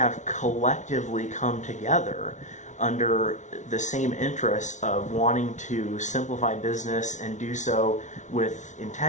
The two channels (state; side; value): late; right; 0.36 ms